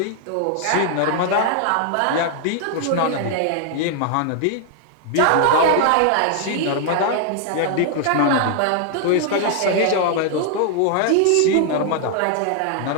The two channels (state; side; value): different; both; correlation 0.00